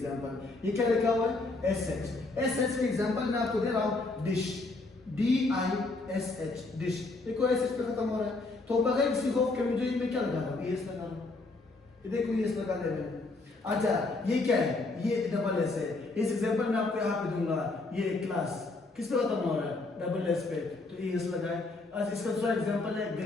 ये क्या लिखा हुआ है? S H. एस एच का एग्जांपल मैं आपको दे रहा हूँ, dish, D I S H, dish. देखो एस एच पे खत्म हो रहा है तो बगैर किसी खौफ के मुझे मैं क्या लगा रहा हूँ? एस लगा रहा हूँ। ये देखो एस लगा दे रहे हैं। अच्छा, ये क्या है? ये डबल एस है। इस एग्जांपल में आपको यहाँ पे दूंगा, ये क्लास किस पे खत्म हो रहा है? डबल एस पे, तो एस लगा है। अच्छा, इसका दूसरा एग्जांपल है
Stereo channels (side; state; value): right; quieter; 3.4 dB